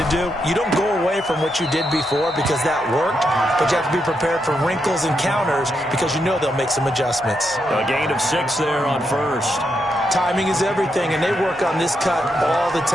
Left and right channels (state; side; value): normal; both; correlation 0.82